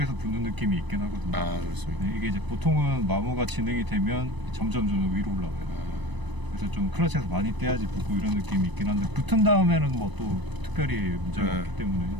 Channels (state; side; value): late; left; 1.0 ms